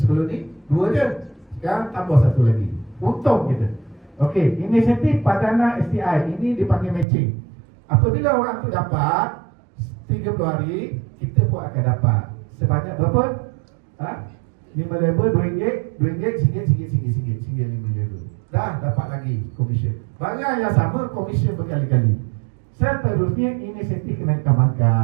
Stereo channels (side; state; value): left; drops out; at 7.1 s